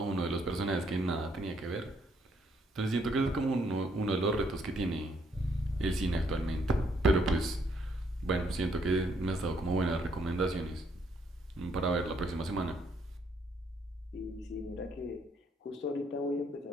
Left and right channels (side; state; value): both; normal; correlation 0.70